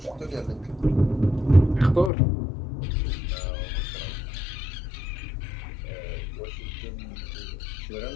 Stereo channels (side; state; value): right; drops out; at 2.1 s